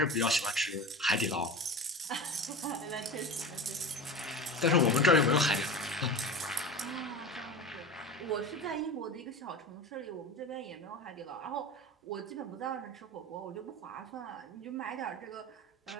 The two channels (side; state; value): both; normal; correlation 0.30